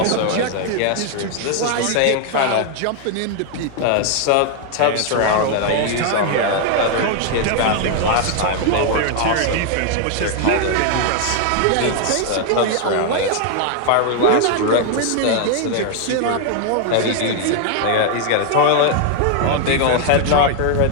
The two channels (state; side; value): different; both; correlation 0.00